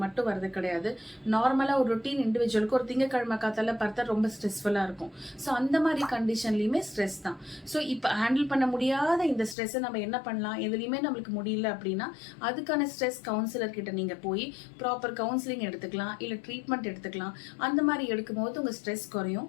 மட்டும் வரது கிடையாது. நார்மலா ஒரு ரொட்டீன் இண்டிவிஜுவலுக்கு ஒரு திங்கக்கிழமை காத்தால பார்த்தா ரொம்ப ஸ்ட்ரெஸ்ஃபுல்லா இருக்கும். ஸோ அந்த மாதிரி கண்டிஷன்லயுமே ஸ்ட்ரெஸ் தான். ஸோ இப்போ ஹேண்டில் பண்ண முடியாத இந்த ஸ்ட்ரெஸ்ஸை நம்ம என்ன பண்ணலாம், எதுலையுமே நம்மளுக்கு முடியல அப்படின்னா அதுக்கான ஸ்ட்ரெஸ் கவுன்சிலர் கிட்ட நீங்க போய் ப்ராப்பர் கவுன்சிலிங் எடுத்துக்கலாம், இல்ல ட்ரீட்மெண்ட் எடுத்துக்கலாம். அந்த மாதிரி எடுக்கும்போது உங்க ஸ்ட்ரெஸ் குறையும்,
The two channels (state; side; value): drops out; right; at 9.6 s